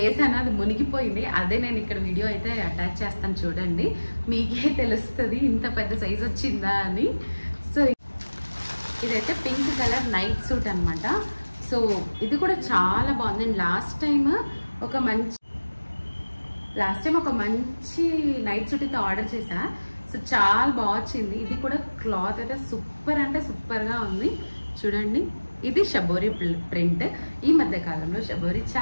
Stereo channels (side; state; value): both; inverted; correlation -1.00